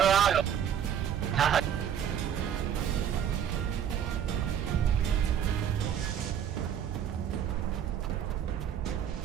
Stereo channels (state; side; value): quieter; left; 9.0 dB